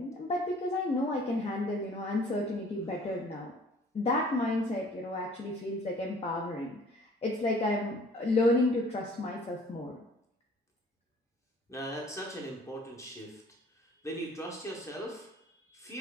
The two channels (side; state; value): both; normal; correlation 0.53